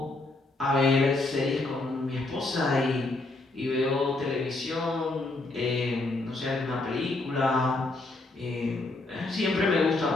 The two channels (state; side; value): quieter; right; 3.1 dB